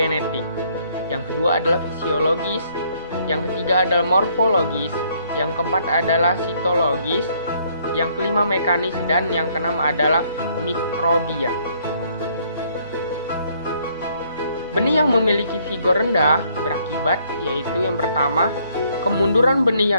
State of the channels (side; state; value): both; inverted; correlation -0.66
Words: yang kedua adalah fisiologis, yang ketiga adalah morfologis, yang keempat adalah sitologis, yang kelima mekanis, dan yang keenam adalah mikrobia. Benih yang memiliki vigor rendah berakibat yaitu yang pertama, kemunduran benih